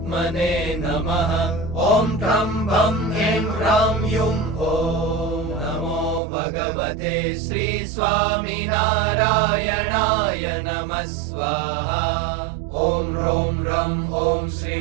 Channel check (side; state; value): left; drops out; at 6.2 s